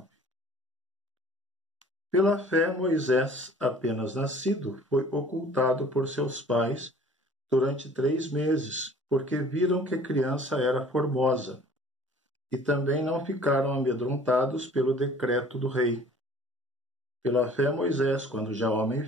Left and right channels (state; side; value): normal; both; correlation 0.50